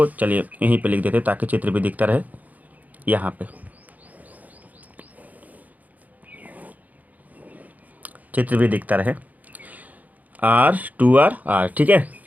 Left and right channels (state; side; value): late; left; 0.078 ms